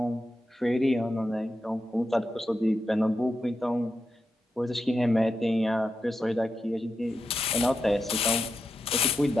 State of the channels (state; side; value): normal; both; correlation 0.88